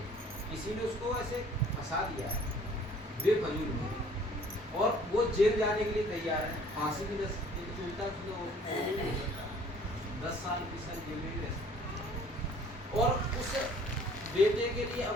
किसी ने उसको ऐसे फंसा दिया है बेफजूल में, और वो जेल जाने के लिए तैयार है, फांसी भी 10 साल 20 साल जेल में भी रह सकता। और उस बेटे के लिए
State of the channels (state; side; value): normal; both; correlation 0.54